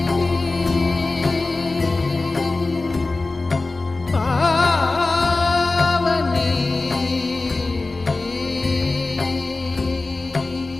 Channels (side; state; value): right; quieter; 3.4 dB